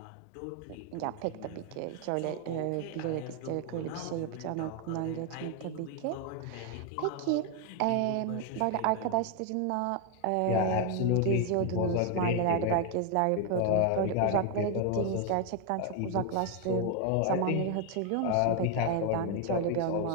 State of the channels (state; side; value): different; both; correlation 0.01